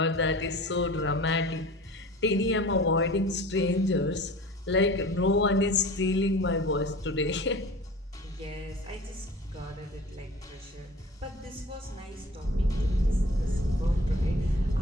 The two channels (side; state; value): both; normal; correlation 0.41